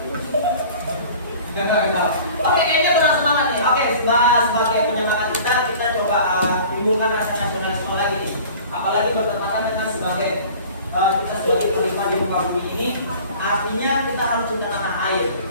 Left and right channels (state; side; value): inverted; both; correlation -0.45